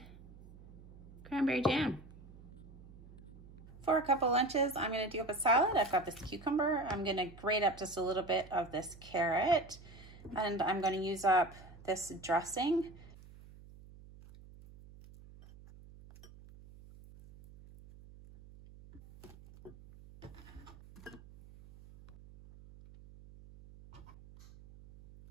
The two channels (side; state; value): right; noise; hum, 19 dB below the sound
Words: Cranberry jam. For a couple lunches, I'm going to do up a salad. I've got this cucumber. I'm going to grate up just a little bit of this carrot, and I'm going to use up this dressing.